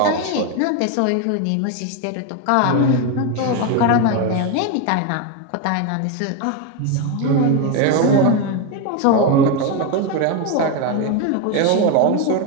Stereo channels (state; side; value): different; both; correlation 0.02